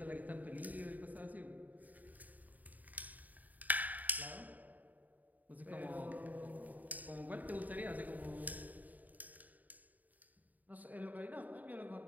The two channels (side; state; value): left; late; 0.079 ms